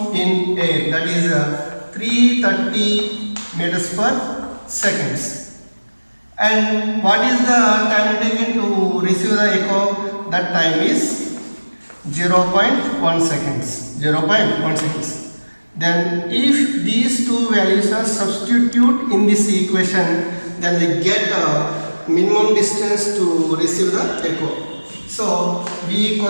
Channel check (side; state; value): both; inverted; correlation -1.00